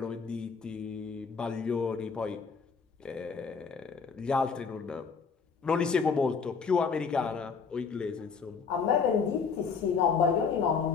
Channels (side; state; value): right; quieter; 5.6 dB